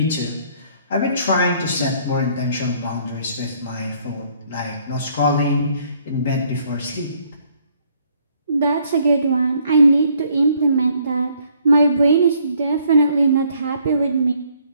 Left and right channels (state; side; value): inverted; both; correlation -0.65